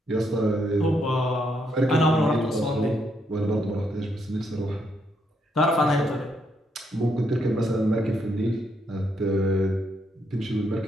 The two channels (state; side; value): normal; both; correlation 0.76